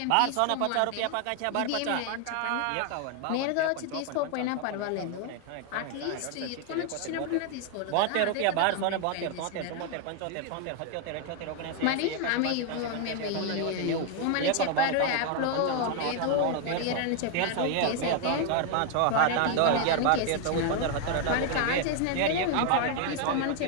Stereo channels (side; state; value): both; different; correlation 0.00